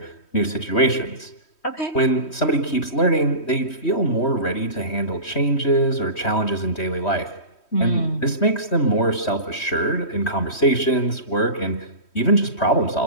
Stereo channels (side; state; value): right; late; 3.1 ms